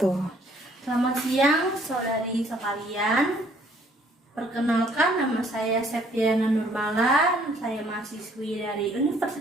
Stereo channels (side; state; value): both; normal; correlation 0.62